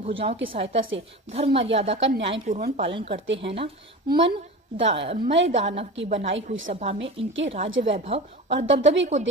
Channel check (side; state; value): both; normal; correlation 0.31